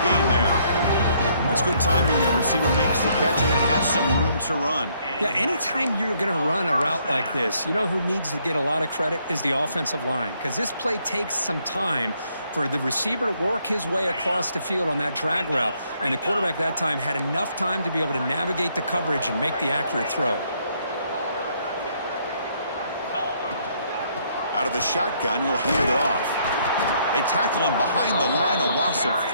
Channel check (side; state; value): both; inverted; correlation -0.69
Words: gain there. That's good timing there. Receiver makes the catch and it has some room to run. Yeah, anytime you're going to run a route like this, you know who needs to get a lot of credit is the offensive line, because this play takes some time for the receiver to work his way across the field on that drag route, and the quarterback that time had enough time to be able to navigate the coverage and make the accurate throw. Out of the shotgun, he'll hand it off. They tackle him behind the line, a loss of